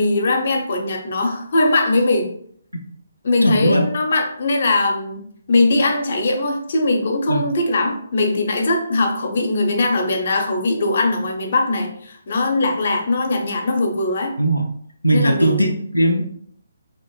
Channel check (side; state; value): both; inverted; correlation -0.81